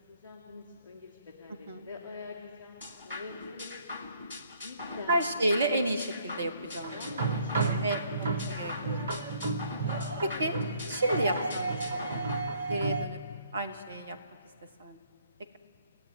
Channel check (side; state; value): both; inverted; correlation -0.63